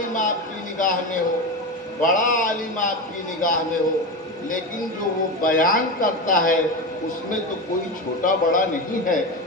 آپ کی نگاہ میں ہو، بڑا عالم آپ کی نگاہ میں ہو، لیکن جو وہ بیان کرتا ہے اس میں تو کوئی چھوٹا بڑا نہیں ہے۔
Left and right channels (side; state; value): both; normal; correlation 0.20